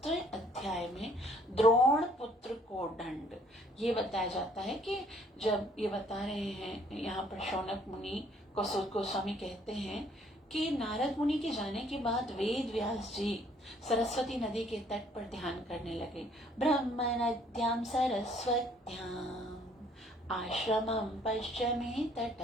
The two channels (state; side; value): normal; both; correlation 0.62